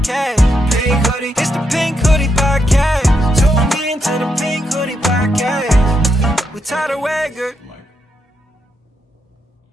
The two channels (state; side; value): normal; both; correlation 0.79